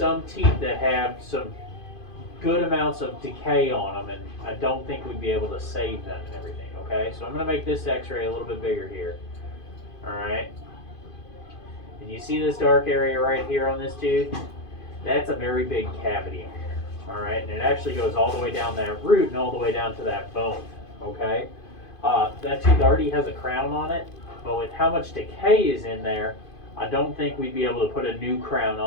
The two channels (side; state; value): right; late; 2.5 ms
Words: teeth that have some good amounts of decay on them, and I don't think we'd be able to save them and everything, okay? So I'm going to make this x-ray a little bit bigger here, all right? And you see this dark area right here on this tooth? That's a very big cavity, all right? And it actually goes all the way down that root and all the way down to that bone, okay? That tooth already has a crown on it, but with how much decay is in there, I don't think we'd be able to put a new crown